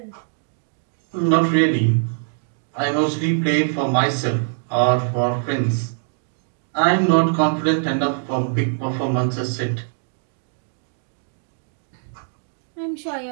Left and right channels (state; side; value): silent; left; 64 dB below the other